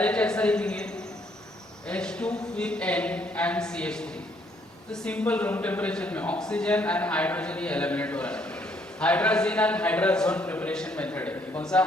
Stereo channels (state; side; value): normal; both; correlation 0.68